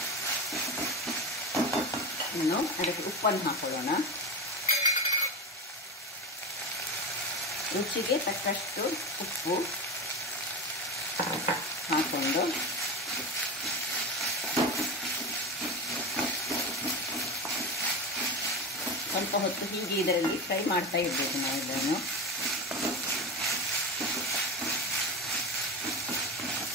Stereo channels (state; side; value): normal; both; correlation 0.22